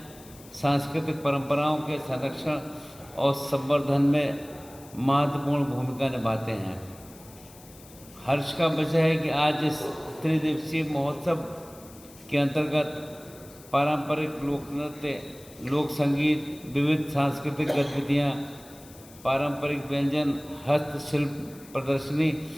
सांस्कृतिक परंपराओं के संरक्षण और संवर्धन में महत्वपूर्ण भूमिका निभाते हैं। हर्ष का विषय है कि आज इस त्रिदिवसीय महोत्सव के अंतर्गत पारंपरिक लोक नृत्य, लोक संगीत, विविध सांस्कृतिक गतिविधियाँ, पारंपरिक व्यंजन, हस्तशिल्प प्रदर्शनी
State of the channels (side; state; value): left; noise; hiss, 22 dB below the sound